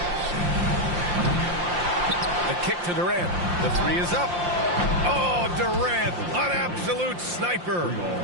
The kick to Durant. The 3 is up. Oh, Durant, an absolute sniper.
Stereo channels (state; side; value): late; left; 5.7 ms